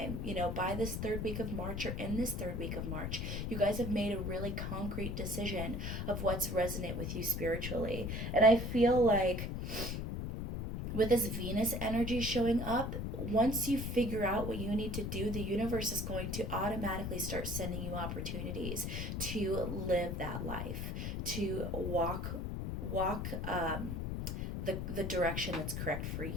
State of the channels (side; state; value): left; noise; rumble, 3 dB below the sound